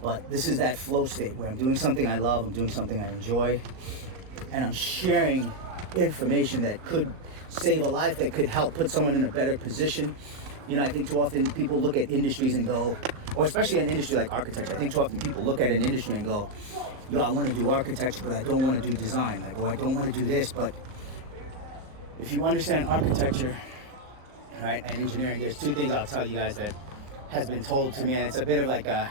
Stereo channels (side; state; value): left; late; 38 ms